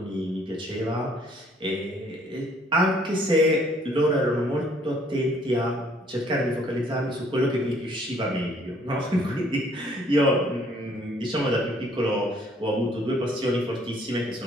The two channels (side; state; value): both; normal; correlation 0.62